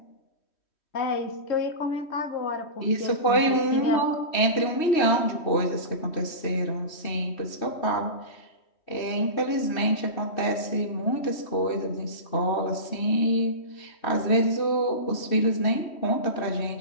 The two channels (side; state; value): right; late; 3.1 ms